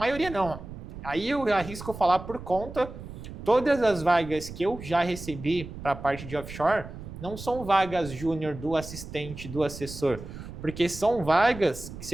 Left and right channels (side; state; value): right; noise; rumble, 12 dB below the sound